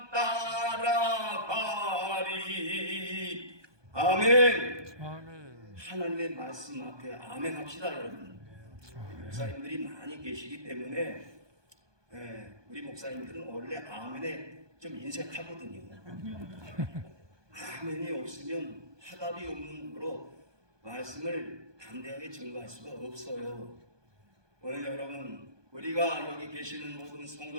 따라가리. 아멘. 하나님의 말씀 앞에 아멘 합시다, 여러분. 목사님들이 많이 계시기 때문에 우리 목사님들은 원래 아멘에 좀 인색하거든요. 아멘이 없으면 화답이 없는 거로 말씀을 담대하게 증거할 수가 없어요. 오늘 여러분, 우리가 여기 계시는 모든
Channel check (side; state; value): left; late; 1.2 ms